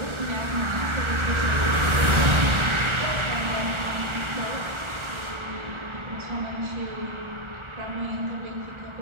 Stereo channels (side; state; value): left; late; 1.4 ms